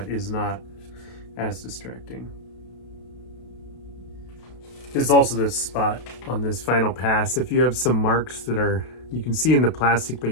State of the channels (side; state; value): right; late; 32 ms